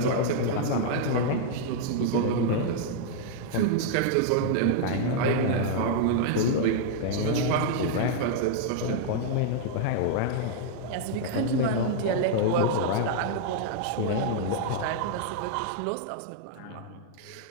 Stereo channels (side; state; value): both; different; correlation -0.01